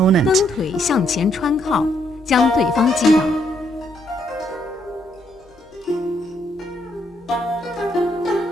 蹬腿向前穿靠，将对方击倒。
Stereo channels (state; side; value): normal; both; correlation 0.73